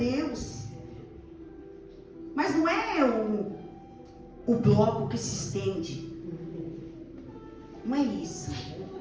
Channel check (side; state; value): both; identical; correlation 1.00